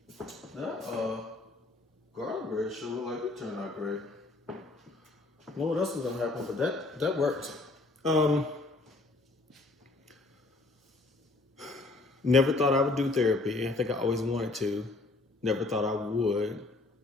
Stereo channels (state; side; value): quieter; right; 3.2 dB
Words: That garlic bread sure looked like it turned out great. I don't know what else is going to happen, but that worked. Um, Never thought I would do therapy. I think I always wanted to. Never thought I would.